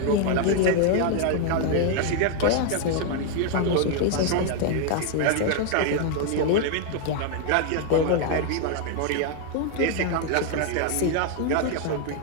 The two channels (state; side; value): different; both; correlation 0.00